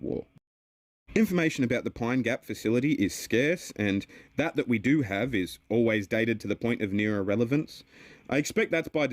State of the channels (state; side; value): identical; both; correlation 1.00